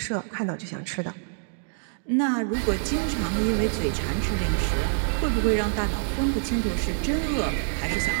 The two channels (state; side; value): silent; left; digital silence